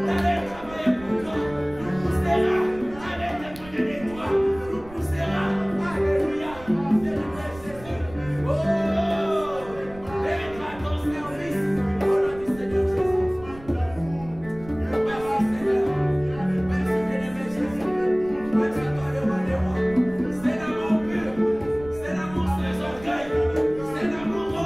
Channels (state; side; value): noise; right; rumble, 18 dB below the sound